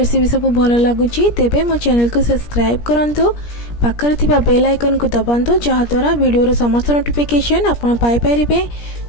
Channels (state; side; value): late; right; 17 ms